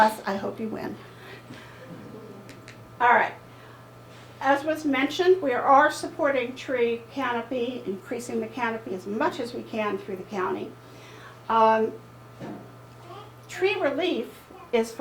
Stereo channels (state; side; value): identical; both; correlation 1.00